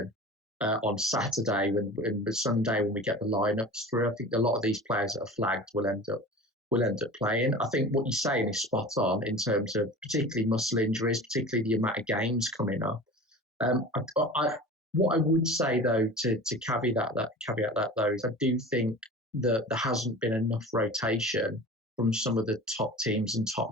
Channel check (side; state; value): both; normal; correlation 0.36